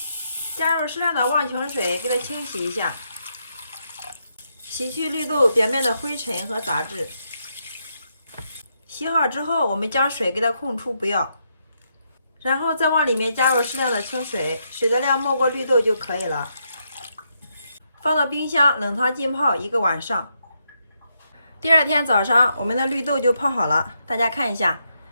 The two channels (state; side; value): inverted; both; correlation -0.79